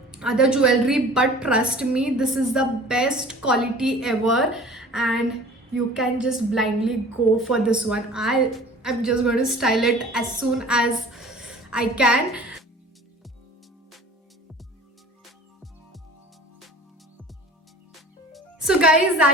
other jewelry, but trust me, this is the best quality ever, and you can just blindly go for this one. I'm just going to style it as soon as I can. So guys,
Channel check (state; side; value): normal; both; correlation 0.44